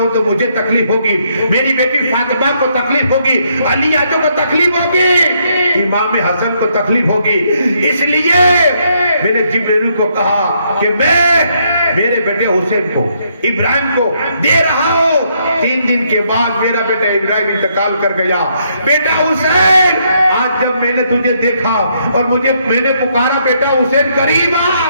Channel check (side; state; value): both; inverted; correlation -0.73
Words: تو مجھے تکلیف ہوگی، میری بیٹی فاطمہ کو تکلیف ہوگی، علی آجو کو تکلیف ہوگی، امام حسن کو تکلیف ہوگی، اس لیے میں نے جبرائیل کو کہا کہ میں میرے بیٹے حسین کو ابراہیم کو دے رہا ہوں۔ 3 دن کے بعد میرا بیٹا ابراہیم انتقال کر گیا۔ بیٹا حسین آج جب میں نے تجھے دیکھا اور میں نے پکارا بیٹا حسین قریب آ،